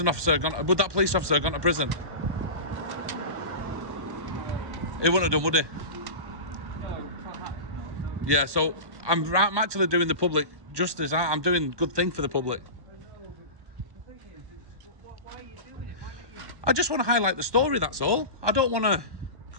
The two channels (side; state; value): left; late; 1.2 ms